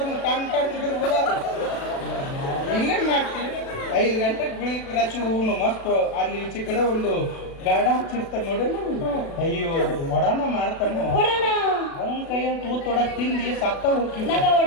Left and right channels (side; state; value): right; late; 36 ms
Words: ಟನ್ ಟನ್ ಸಿಗಿದ್ರು ಇಲ್ಲೇನ್ ಮಾಡ್ತೀವಿ. 5 ಗಂಟೆಗೆ ಬೆಳಿಗ್ಗೆ ರಚು ಹೂನು ಮಸ್ತ್ ಅಲ್ಲಿ ಈಚೆ ಕಡೆ ಒಂದು ಗಾಡ ಹಚ್ಚಿರ್ತಾರೆ ನೋಡಿ. ಅಯ್ಯೋ ಒಡಾನ ಮಾಡ್ತಾನ ಅವನ ಕೈಯನ್ನು ತೂತೊಡಕ್ ತಿಂದಿ ಸತ್ತ ಹೋಗಿ ನಂಗ